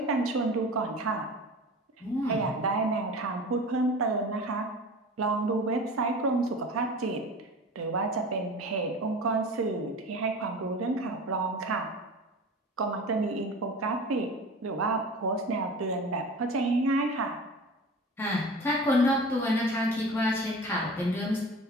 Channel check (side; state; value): both; normal; correlation 0.36